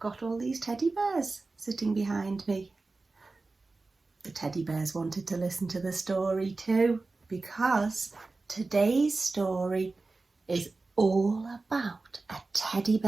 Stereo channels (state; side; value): quieter; left; 3.6 dB